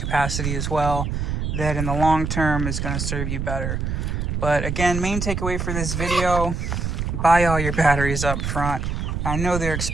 as well, that in the long term is going to serve you better. But again, main takeaway for this video, buy all your batteries up front. I know they're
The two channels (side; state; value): right; noise; rumble, 2 dB below the sound